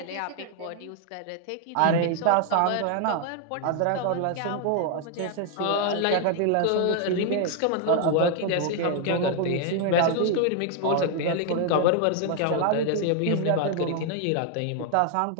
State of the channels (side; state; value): both; different; correlation 0.00